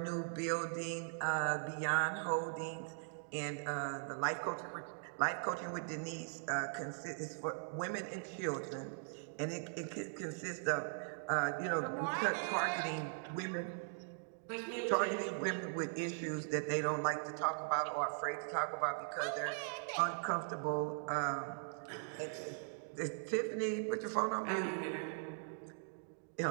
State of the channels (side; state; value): left; silent; digital silence